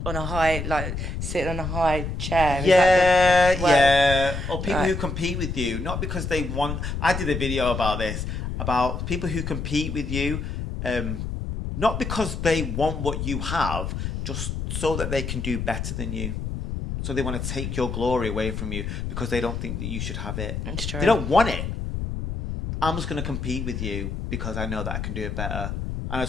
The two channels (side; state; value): left; noise; rumble, 4 dB below the sound